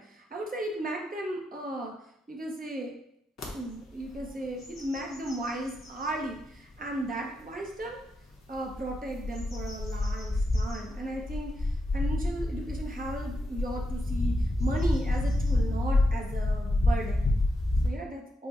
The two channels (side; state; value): both; normal; correlation 0.85